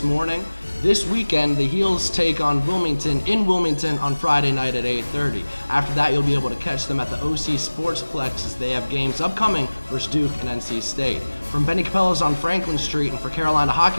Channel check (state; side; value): inverted; both; correlation -1.00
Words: morning. This weekend, the Heels take on Wilmington in Wilmington on Friday night at 8:30. After that, you'll be able to catch them at the OC Sportsplex as they have games upcoming versus Duke and NC State. From Benny Capella's on Franklin Street and for Carolina